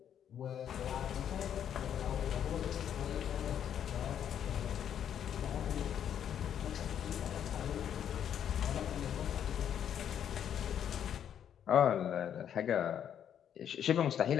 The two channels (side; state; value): right; quieter; 9.3 dB